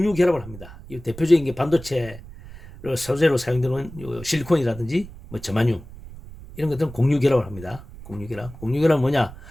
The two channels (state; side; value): noise; right; rumble, 16 dB below the sound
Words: 결합을 합니다. 이 대표적인 게 반도체 소재로 사용되는 실리콘이라든지 뭐 저마늄 이런 것들은 공유 결합을 합니다. 공유 결합. 공유 결합은 뭐냐?